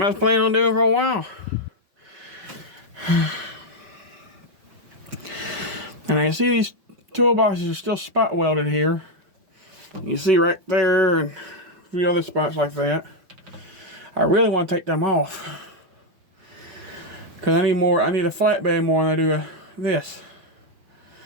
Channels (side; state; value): left; late; 5.4 ms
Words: I was planning on doing for a while. And I see these toolboxes are still spot welded here. You see right there and a few other spots like that. I really want to take them off. Because I need a flatbed more than I do this.